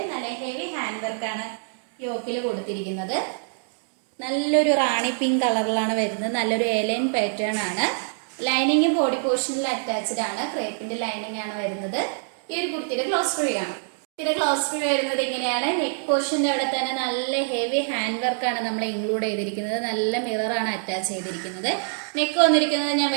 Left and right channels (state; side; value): silent; left; digital silence